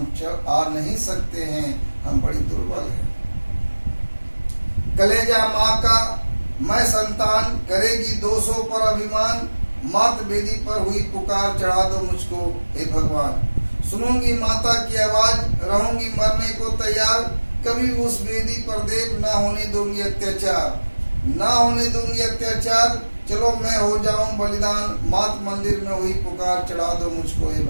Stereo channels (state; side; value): inverted; both; correlation -1.00